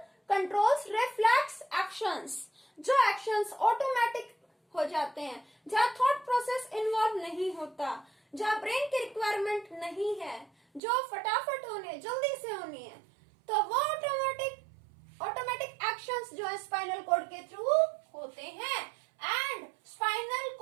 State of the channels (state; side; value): drops out; left; at 10.8 s